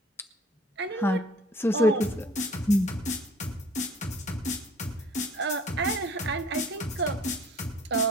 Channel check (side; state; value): both; normal; correlation 0.52